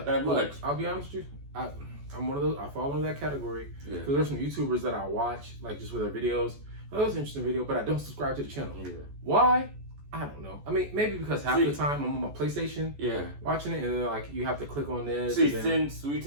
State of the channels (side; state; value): left; late; 14 ms